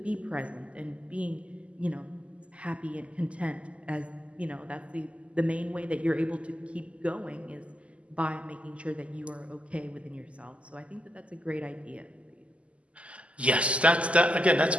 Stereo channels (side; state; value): left; late; 0.060 ms